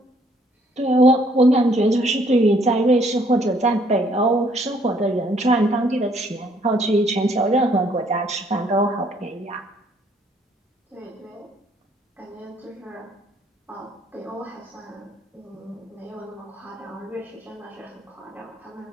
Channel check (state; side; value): normal; both; correlation 0.65